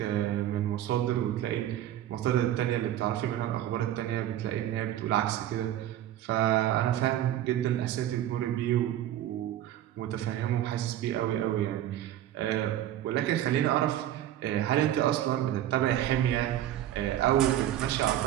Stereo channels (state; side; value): quieter; left; 12.3 dB